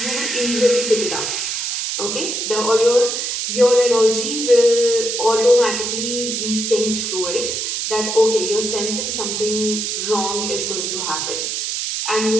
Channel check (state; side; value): noise; right; hiss, 2 dB below the sound